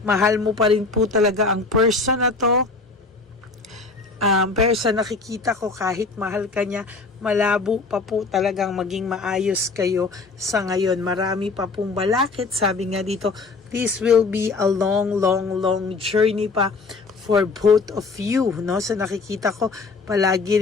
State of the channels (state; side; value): quieter; right; 4.1 dB